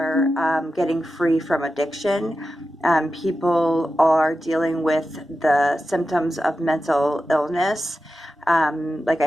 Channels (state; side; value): normal; both; correlation 0.92